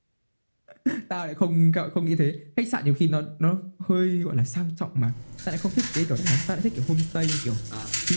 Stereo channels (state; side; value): inverted; both; correlation -1.00